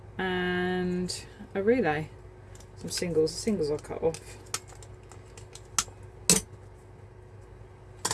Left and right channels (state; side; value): identical; both; correlation 1.00